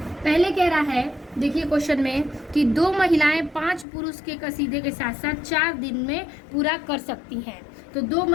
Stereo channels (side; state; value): right; drops out; at 3.9 s